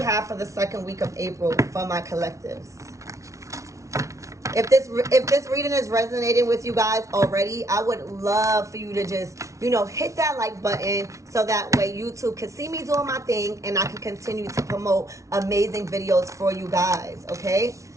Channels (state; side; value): late; left; 0.15 ms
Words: have for the second week of April for my collectives? If this reading is resonating with you guys already, I would love for you to just, hit that like button so that way YouTube can see me doing my thing and I can continue to promote amazing videos for you guys, okay?